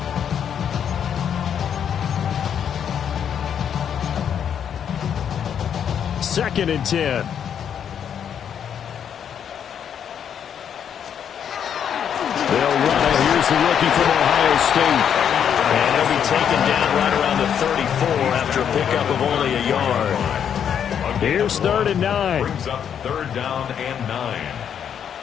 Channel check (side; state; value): right; quieter; 8.4 dB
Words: Second and 10. They'll run it. Here's the rookie from Ohio State. And he'll be taken down right around the 34 after a pickup of only a yard. Here's 3rd and 9. Brings up 3rd down and 9.